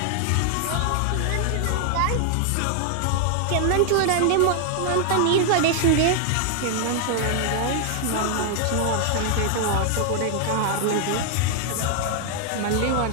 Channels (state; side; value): different; both; correlation 0.00